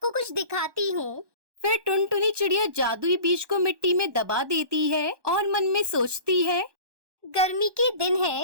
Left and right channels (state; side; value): late; left; 1.2 ms